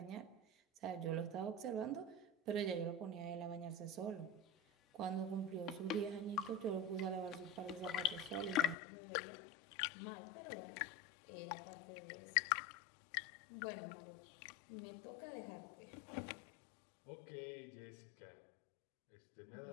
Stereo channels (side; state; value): right; drops out; at 8.8 s